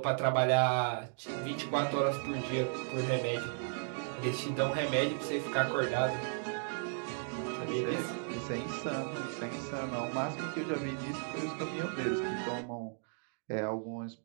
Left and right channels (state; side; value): silent; left; digital silence